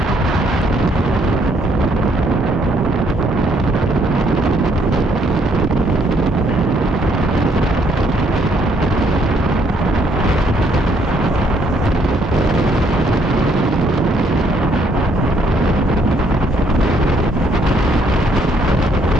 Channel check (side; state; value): both; normal; correlation 0.68